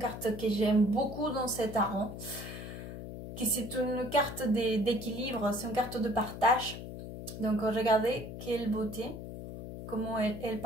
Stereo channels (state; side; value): noise; left; hum, 9 dB below the sound